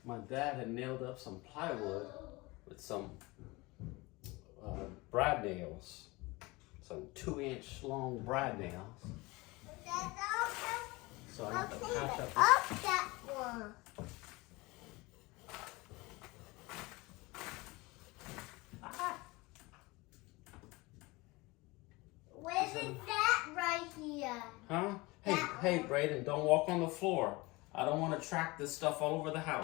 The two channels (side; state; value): right; quieter; 23.2 dB